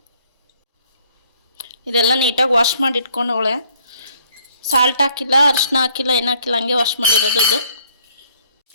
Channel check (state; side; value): inverted; both; correlation -0.64